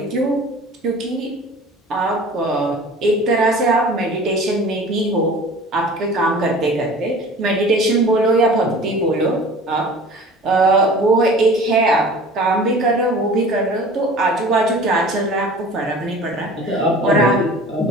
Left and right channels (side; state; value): both; normal; correlation 0.43